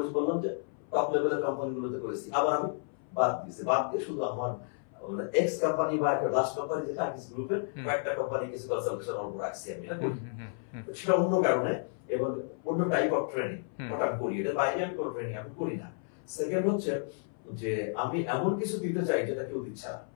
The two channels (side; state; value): right; silent; 57 dB below the other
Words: বললাম যে টপ লেভেলের কোম্পানিগুলোতে করেছি, আবার আমি বাদ দিয়ে শুধু আমার এক্স কোম্পানি বা একটা লাস্ট কোম্পানি যেটা আকিস গ্রুপের কয়েকটা কোম্পানি কিছু কনসালটেশন অল্প রাখছি আমি, সেটা অন্য কারণে এবং অন্য টাইপ অফ ট্রেনিং ওটা আমি করি। এর বাইরে আমি কোনো ট্রেনিং আমি করি না। সেকেন্ড হচ্ছে যে আমি এমন কিছু দিতে চাই যেটা কেউ দিচ্ছে না,